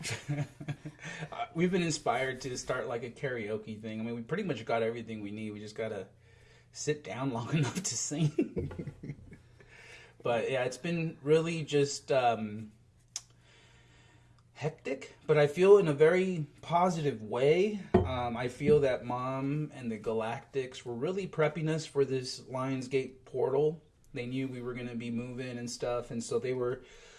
We've been inspired to start like a karaoke thing. I mean, we pretty much got everything we need. We just got to sit down long enough to sing. But yeah, it's been really just hectic, but I feel in a very positive way. I feel that Mom and the Galactics were really prepping us for this Lionsgate portal. They knew we were going to be moving and stuff, and so they were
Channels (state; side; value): identical; both; correlation 1.00